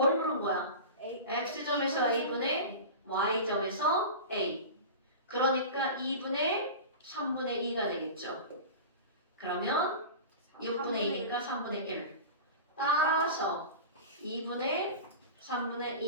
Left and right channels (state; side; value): inverted; both; correlation -0.31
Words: 물은 거야? X점에서 A분의 Y점에서 A. 그러니까 2분의 3분의 2가 되겠죠. 그러면 6분의 2니까 3분의 1. 따라서 2분의 3분의